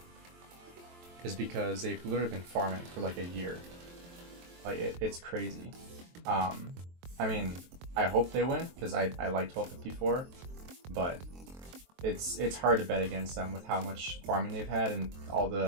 is because they've literally been farming for like a year. Like it's crazy. I mean, I hope they win because I like 1254, but it's hard to bet against them with how much farming they've had and all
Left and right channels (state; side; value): late; left; 23 ms